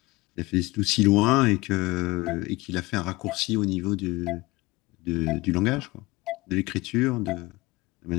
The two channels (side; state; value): right; quieter; 21.7 dB